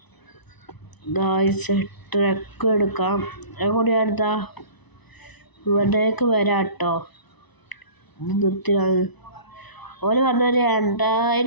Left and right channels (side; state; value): right; late; 1.0 ms